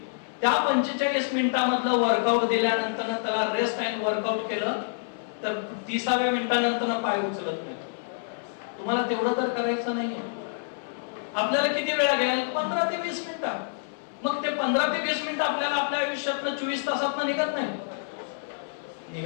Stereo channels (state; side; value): silent; right; 60 dB below the other